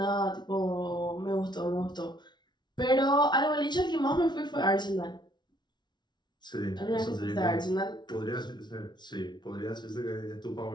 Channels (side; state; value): right; late; 0.21 ms